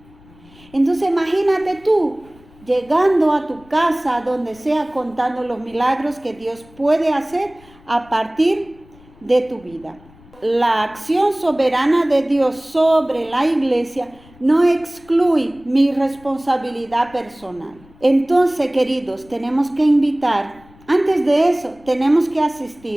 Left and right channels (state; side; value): noise; left; rumble, 26 dB below the sound